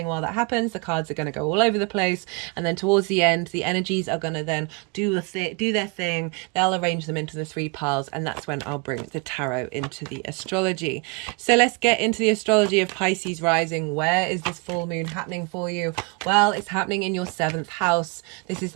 while that happens. The cards are going to go all over the place, and then towards the end the energies are going to then do their thing. They'll arrange them into the 3 piles, and that's when I'll bring the tarot into the astrology. So let's get into the astrology of Pisces rising. Where is this full moon happening for you? Well, it's happening in your 7th house. This is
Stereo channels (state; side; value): quieter; left; 30.5 dB